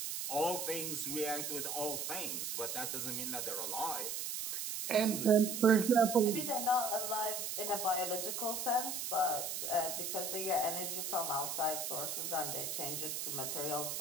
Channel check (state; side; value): noise; right; hiss, 3 dB below the sound